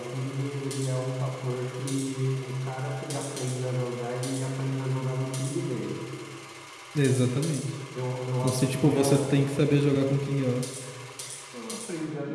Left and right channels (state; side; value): identical; both; correlation 1.00